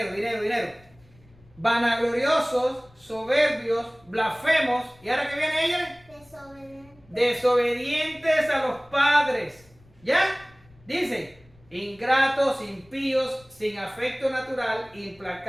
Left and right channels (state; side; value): noise; left; rumble, 28 dB below the sound